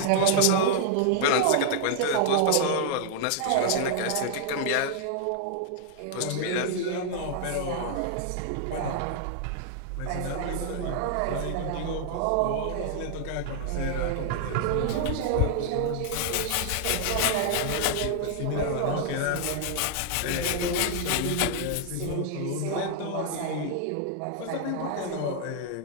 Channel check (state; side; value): different; both; correlation 0.00